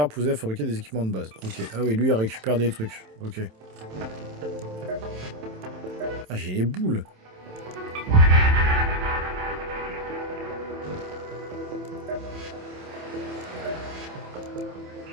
pour vous aider à fabriquer des équipements de base. Ok. Ah oui, lui, il récupère des trucs. Ok. Ah, j'ai les boules.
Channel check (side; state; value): left; late; 27 ms